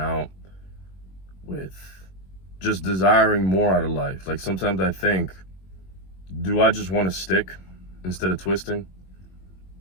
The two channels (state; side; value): late; right; 21 ms